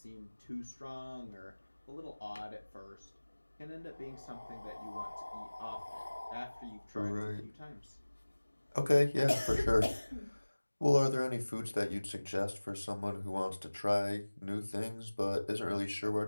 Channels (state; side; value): inverted; both; correlation -1.00